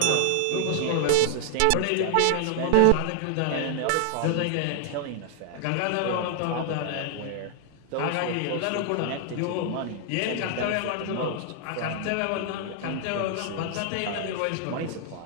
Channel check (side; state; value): both; different; correlation 0.00